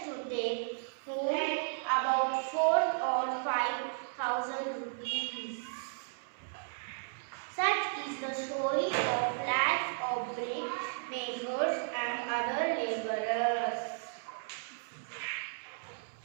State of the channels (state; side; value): silent; left; 55 dB below the other